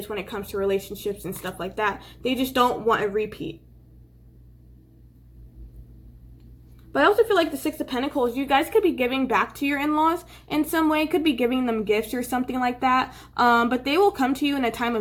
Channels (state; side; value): identical; both; correlation 1.00